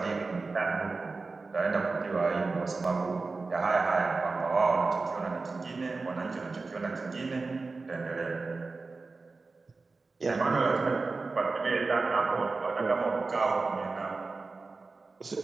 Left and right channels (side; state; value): left; quieter; 3.9 dB